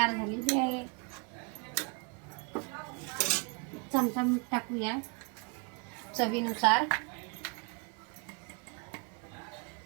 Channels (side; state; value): left; quieter; 32.7 dB